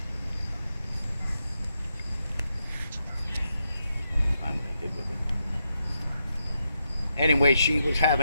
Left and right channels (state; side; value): inverted; both; correlation -0.83